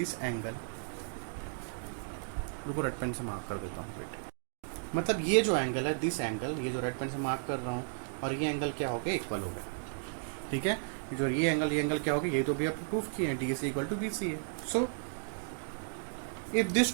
एंगल, रुको रेड पेन से मार्क कर देता हूँ, वेट, मतलब ये जो एंगल है, दिस एंगल, ये जो रेड पेन से मार्क कर रहा हूँ, और ये एंगल क्या हो गया, इक्वल हो गया। ठीक है, जो ये एंगल क्या हो गया, ये तो भी अपन प्रूफ किए हैं, DAC equal to BCA। So if these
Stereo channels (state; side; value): silent; left; digital silence